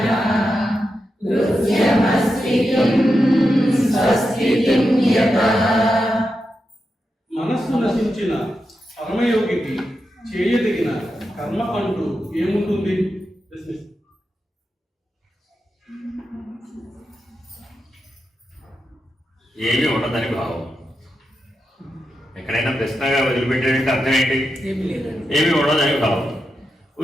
మనస్సు నశించిన పరమయోగికి చేయదగిన కర్మ అంటూ ఏముంటుంది? ఏమీ ఉండదని భావం. ఎక్కడైనా ప్రశ్నగా వదిలిపెట్టాడంటే అర్థం ఏంటి? ఏమీ ఉండదని భావం.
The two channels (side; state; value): both; normal; correlation 0.88